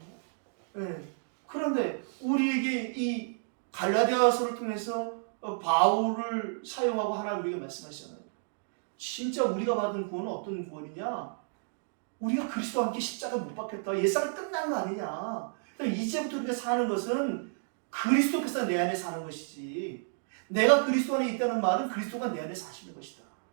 네. 그런데 우리에게 이 갈라디아서를 통해서 바울을 사용하고 하나님 우리에게 말씀하시잖아요. 진짜 우리가 받은 구원은 어떤 구원이냐? 우리가 그리스도와 함께 십자가에 못 박혔다. 옛사람 끝난 거 아니냐? 이제부터 우리가 사는 것은 그리스도께서 내 안에 사는 것이지 내가 그리스도 안에 있다는 말은 그리스도가 내 안에 사시는 것이다.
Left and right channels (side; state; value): left; silent; digital silence